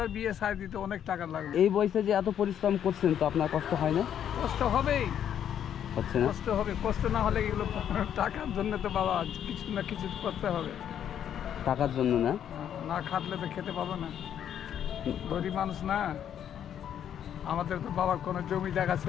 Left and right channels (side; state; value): right; quieter; 9.5 dB